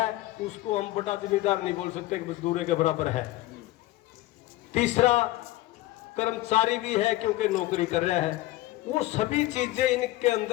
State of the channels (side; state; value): right; quieter; 17.1 dB